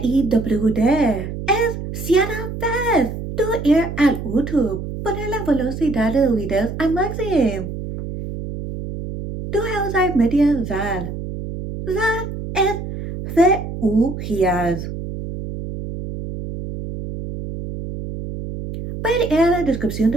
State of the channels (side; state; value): right; noise; hum, 7 dB below the sound